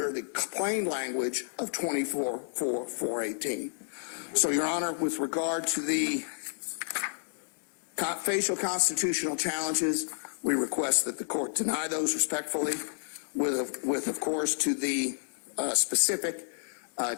the plain language of 24.418. So, Your Honor, with regard to the facial constitutional challenges, we request that the court deny those respectfully. With of course, to the specific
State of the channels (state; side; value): silent; right; digital silence